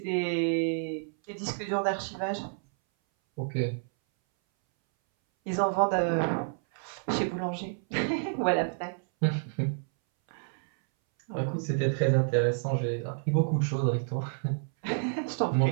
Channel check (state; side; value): silent; left; 58 dB below the other